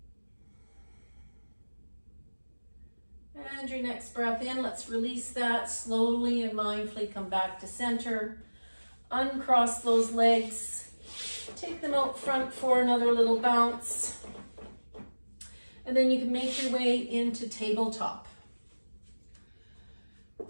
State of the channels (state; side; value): inverted; both; correlation -1.00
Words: And your next breath in, let's release that slowly and mindfully. Come back to center. Uncross those legs. Take them out front for another little bounce. And then you can make your way into tabletop.